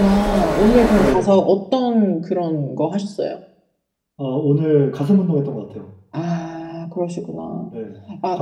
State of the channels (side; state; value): both; identical; correlation 1.00